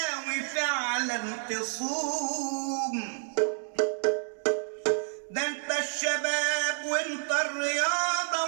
فعلا تصوم. ده انت الشباب وانت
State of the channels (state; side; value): silent; left; digital silence